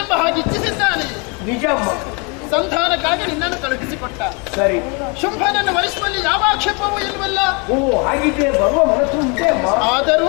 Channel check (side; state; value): right; quieter; 32.3 dB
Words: ಎಂಬ ಹಾಗೆ ಇಚ್ಛಿಸಿದ್ದಾನೆ ನಿಜಮ್ಮ ಸಂಧಾನಕ್ಕಾಗಿ ನಿನ್ನನ್ನು ಕಳುಹಿಸಿಕೊಟ್ಟ ಸರಿ ಶುಂಭನನ್ನು ವರಿಸುವಲ್ಲಿ ಯಾವ ಆಕ್ಷೇಪವೂ ಇಲ್ವಲ್ಲ ಓ ಹಾಗಿದ್ರೆ ಬರುವ ಮನಸ್ಸು ಉಂಟೆ ಅಮ್ಮ